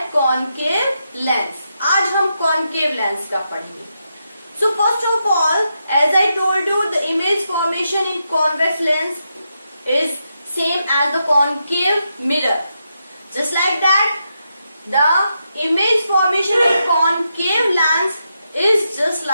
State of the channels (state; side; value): inverted; both; correlation -0.84